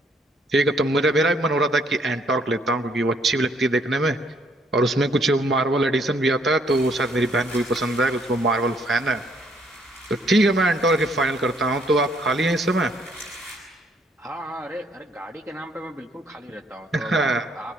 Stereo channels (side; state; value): both; normal; correlation 0.67